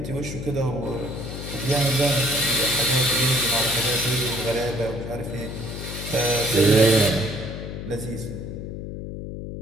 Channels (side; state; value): left; noise; hum, 8 dB below the sound